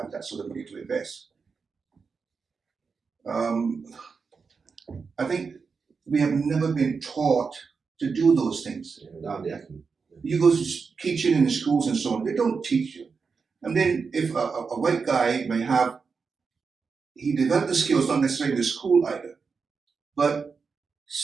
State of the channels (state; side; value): quieter; left; 5.2 dB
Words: that sort of money to invest. I think we have never been taught to do those things. You go to teaching in the schools and so on, they don't teach you. And then if a white guy may have, he developed the skills not necessarily in the school either, but